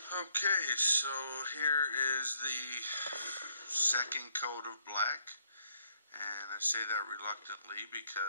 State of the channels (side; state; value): both; inverted; correlation -0.69